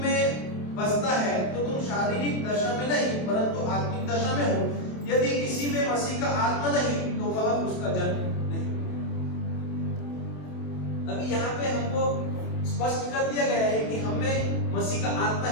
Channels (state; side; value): late; right; 28 ms